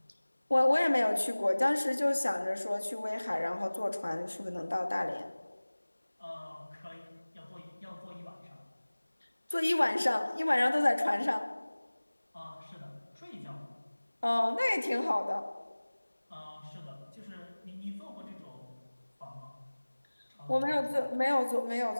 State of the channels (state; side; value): inverted; both; correlation -1.00